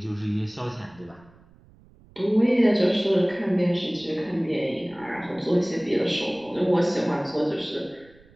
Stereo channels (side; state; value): right; noise; rumble, 27 dB below the sound